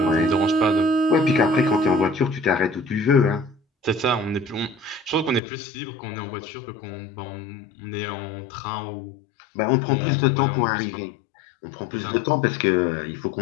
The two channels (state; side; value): drops out; right; at 5.4 s